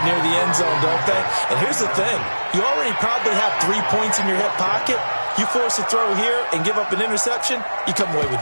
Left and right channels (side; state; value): both; inverted; correlation -1.00